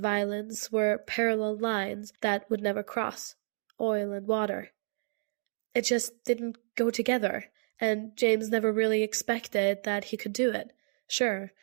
were parallel lines that would never cross, oil and water. It just didn't go together, and James never really expected that he could do it. Sure,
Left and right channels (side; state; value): left; silent; 57 dB below the other